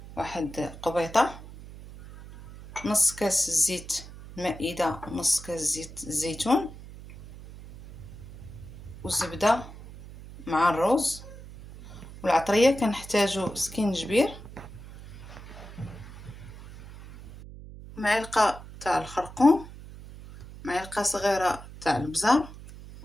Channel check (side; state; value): right; noise; hum, 15 dB below the sound